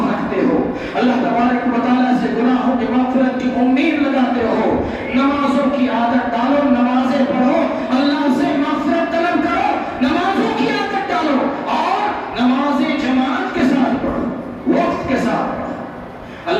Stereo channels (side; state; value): both; identical; correlation 1.00